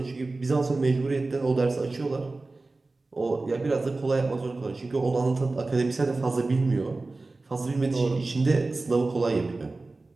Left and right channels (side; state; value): left; quieter; 3.4 dB